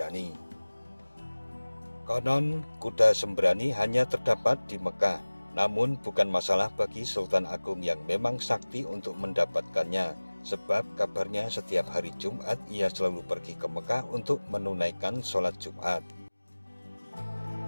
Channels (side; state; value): both; inverted; correlation -1.00